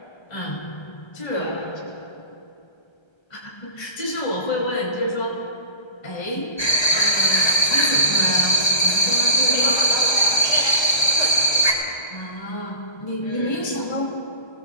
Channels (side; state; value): right; late; 1.3 ms